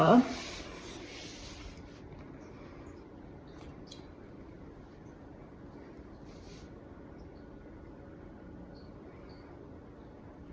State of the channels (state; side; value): identical; both; correlation 1.00